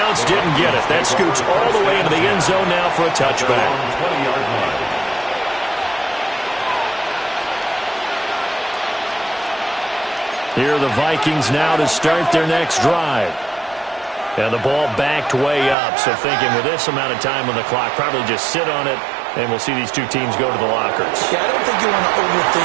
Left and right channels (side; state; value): left; drops out; at 15.8 s